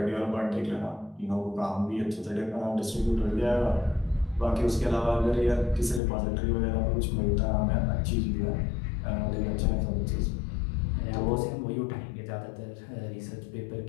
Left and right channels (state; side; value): drops out; right; at 6.0 s